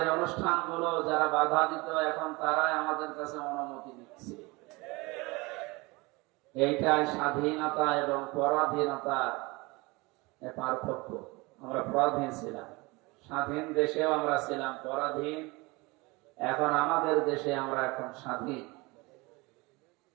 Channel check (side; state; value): left; quieter; 24.3 dB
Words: অনুষ্ঠানগুলো যারা বাধা দিত এখন তারাই আমাদের কাছে অনুমতি দিচ্ছে। এইটাই স্বাধীনতা এবং পরাধীনতার পার্থক্য। আমরা পরাধীন ছিলাম, স্বাধীন দেশেও আমরা ছিলাম পরাধীন, এখন আমাদের দেশে আমরা এখন স্বাধীন।